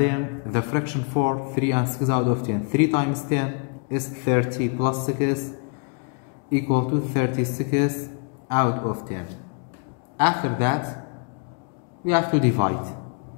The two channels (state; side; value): quieter; right; 36.8 dB